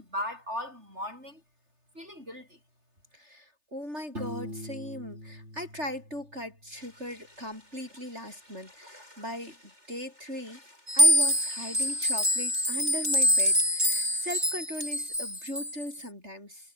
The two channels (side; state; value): left; late; 3.3 ms